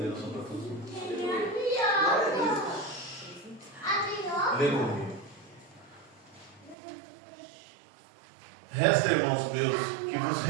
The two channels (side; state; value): left; drops out; at 6.8 s